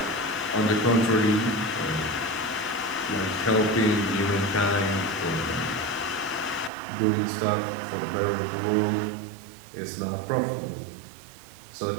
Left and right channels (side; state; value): left; drops out; at 6.7 s